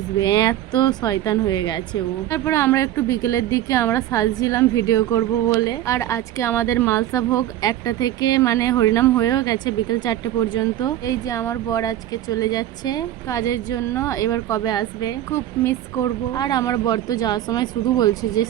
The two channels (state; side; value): quieter; left; 12.9 dB